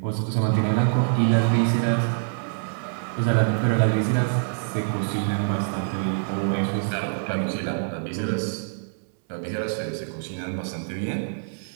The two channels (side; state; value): left; silent; digital silence